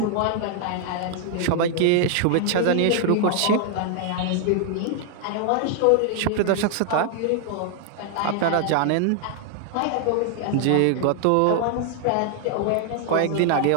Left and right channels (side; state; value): both; different; correlation 0.00